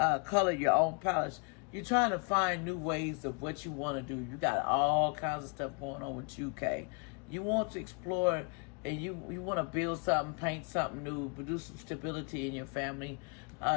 color your own palette. You're trying to find new ways of what you want to do. You got all kinds of stuff going on with you, Kay. You want to explore and you want to build something, paint something new, produce some stability in your family.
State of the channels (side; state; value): right; quieter; 35.7 dB